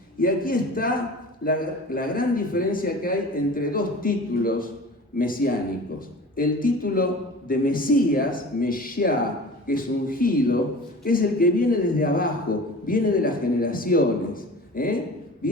Y aquí está la gran diferencia que hay entre dos títulos mesiánicos. El título de Mesías, Meshiá, que es ungido, que es el que viene desde abajo, viene de las generaciones,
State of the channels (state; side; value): normal; both; correlation 0.39